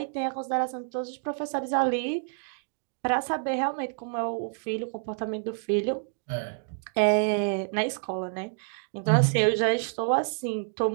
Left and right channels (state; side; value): silent; left; digital silence